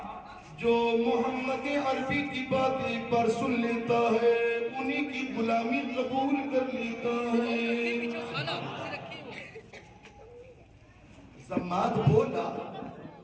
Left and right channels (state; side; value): identical; both; correlation 1.00